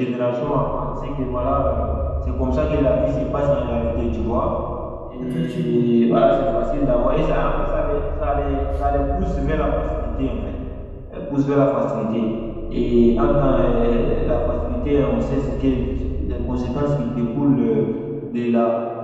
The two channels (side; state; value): both; identical; correlation 1.00